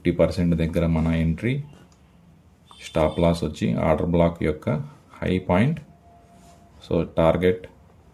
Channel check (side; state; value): both; identical; correlation 1.00